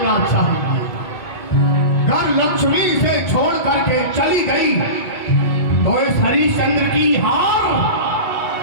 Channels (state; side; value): late; right; 2.3 ms